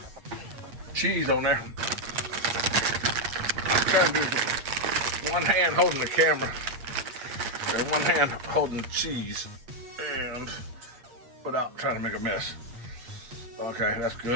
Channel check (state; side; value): late; left; 8.5 ms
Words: cheese on there. I'm trying to do one hand holding the camera and one hand holding the cheese and without trying to make a mess. Okay, that's